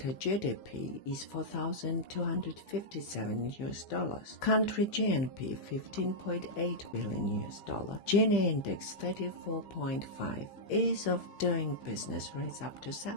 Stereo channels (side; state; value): right; late; 15 ms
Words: GDP is $4,257. Country GNP $15.8 billion. Gini index 34.5. Ease of doing business rates up to